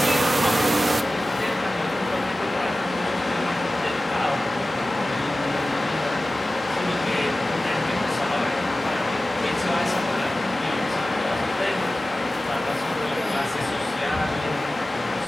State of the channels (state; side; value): normal; both; correlation 0.96